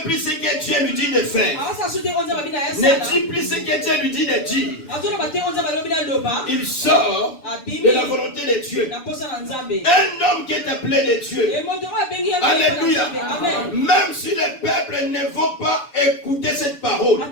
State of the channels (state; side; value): late; right; 7.0 ms